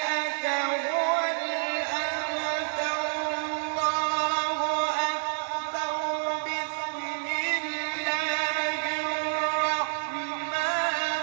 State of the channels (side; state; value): left; silent; digital silence